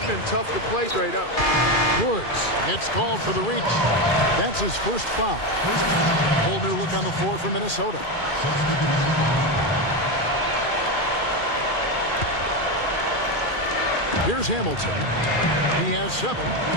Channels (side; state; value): right; late; 2.4 ms